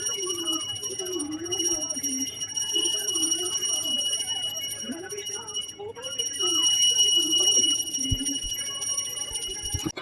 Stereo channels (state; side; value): identical; both; correlation 1.00